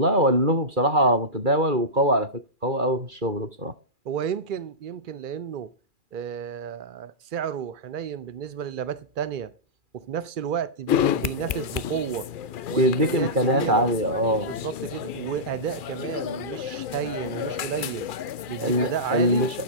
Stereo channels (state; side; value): late; left; 2.4 ms